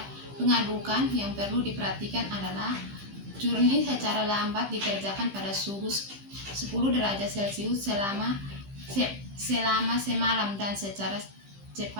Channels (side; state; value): left; late; 15 ms